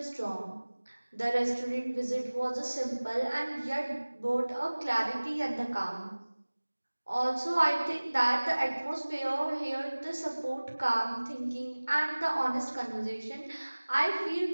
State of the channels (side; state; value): both; inverted; correlation -1.00